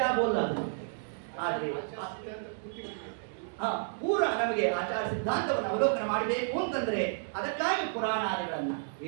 ಆಗೋಲ್ಲ ಅದು. ಆದರೆ ಪೂರ ನಮಗೆ ಆಚಾರ ಸಿದ್ಧಾಂತವನ್ನು ಅವಲೋಕನ ಮಾಡಬೇಕು ಅಂತಂದ್ರೆ ಅದಕ್ಕಾಗಿ ಪುರಾಣಾದಿಗಳನ್ನ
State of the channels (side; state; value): left; silent; digital silence